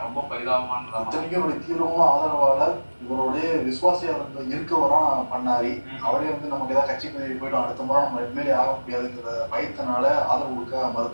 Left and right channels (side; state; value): both; inverted; correlation -1.00